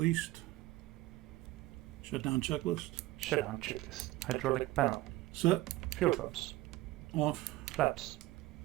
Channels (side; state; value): left; quieter; 17.6 dB